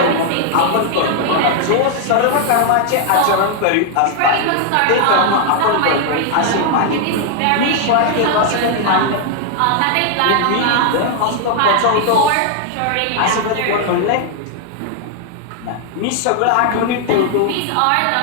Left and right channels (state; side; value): different; both; correlation 0.00